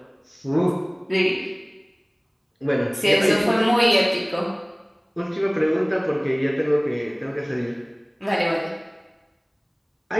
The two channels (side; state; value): both; identical; correlation 1.00